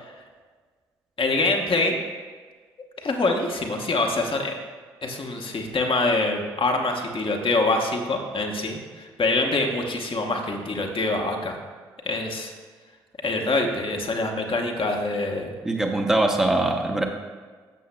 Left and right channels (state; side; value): normal; both; correlation 0.48